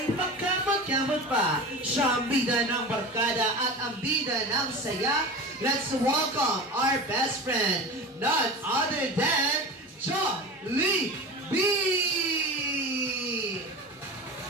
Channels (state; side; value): normal; both; correlation 0.31